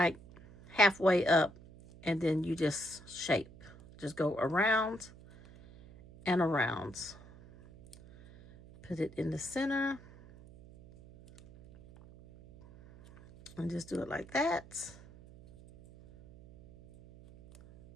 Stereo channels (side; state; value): right; noise; hum, 21 dB below the sound